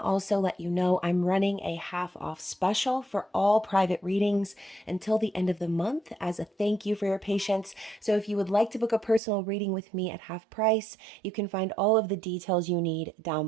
also let you know I'm running a half off special for all private readings until the end of the month as a thank you for your patience. So if you would like to book a personal reading with me at half price, you can find all of the details you need down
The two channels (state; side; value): drops out; left; at 9.2 s